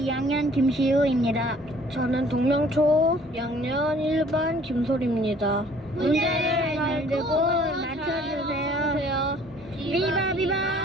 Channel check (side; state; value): both; normal; correlation 0.55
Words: 김시우입니다. 저는 동명초 2학년 1반 김솔입니다. 문제를 잘 듣고 맞춰주세요. 비바 비바